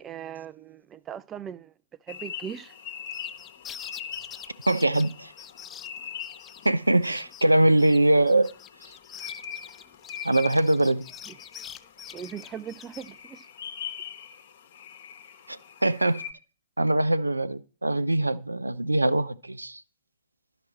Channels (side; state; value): both; inverted; correlation -0.93